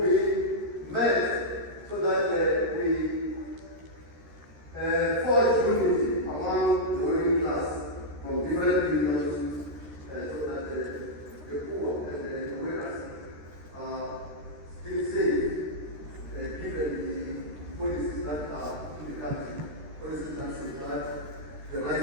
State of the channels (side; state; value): left; late; 13 ms